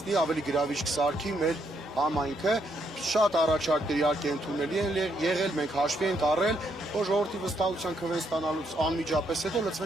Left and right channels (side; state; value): both; normal; correlation 0.75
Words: ավելի գրավիչ կսարքի մեր համայնքը։ Շատ առաջարկներ իհարկե ընդունելի են եղել, մենք հաշվի ենք առել, որ ժողովրդի վստահության քվեն ստանալուց անմիջապես հետո